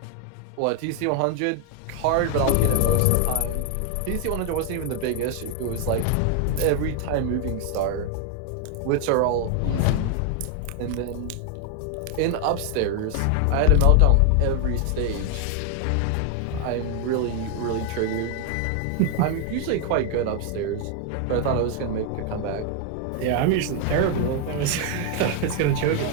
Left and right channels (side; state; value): both; different; correlation 0.00